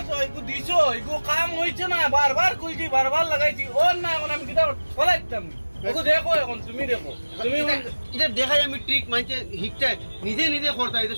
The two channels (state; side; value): inverted; both; correlation -1.00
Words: তো এগো দিছো এগো কাম হইছে না বারবার কইছি বারবার লাগাইছি ওর না এখন আমি কিটা ফলাইতাম ওগো দেখো এখন তুমি দেখো তুমি এটা দেখাই আমি ট্রিক মানছে হিকটা নিজে নিজে করতে হয়